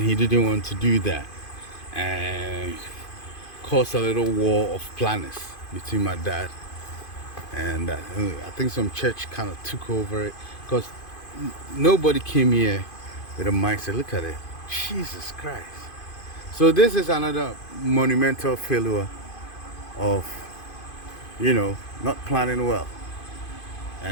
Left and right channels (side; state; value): right; late; 2.5 ms